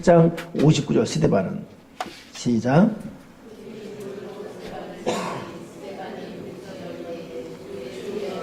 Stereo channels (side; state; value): both; identical; correlation 1.00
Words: 59절 스데반은 시작.